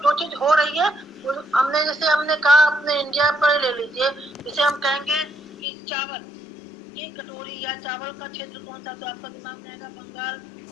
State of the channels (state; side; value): drops out; right; at 5.6 s